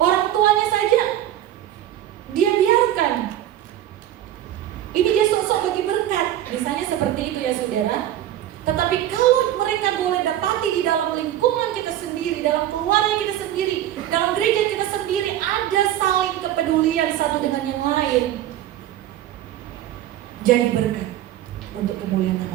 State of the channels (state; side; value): quieter; left; 12.5 dB